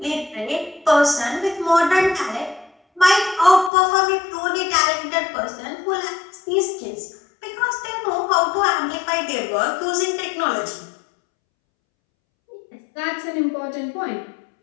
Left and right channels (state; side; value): drops out; right; at 3.7 s